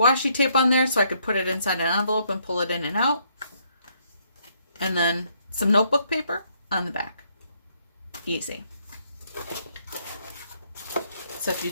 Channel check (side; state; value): both; inverted; correlation -0.71